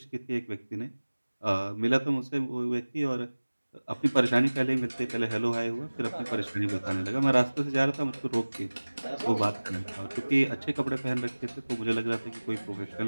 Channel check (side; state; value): both; inverted; correlation -1.00